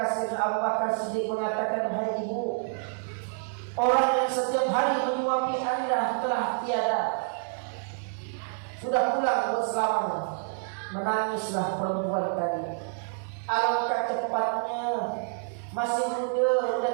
Sayyidina Abu Bakar Siddiq mengatakan, hai ibu, orang yang setiap hari menyuapi Anda telah tiada, sudah pulang berselamanya. Menangislah perempuan tadi. Alangkah cepatnya, masih muda, sudah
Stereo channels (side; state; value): left; silent; digital silence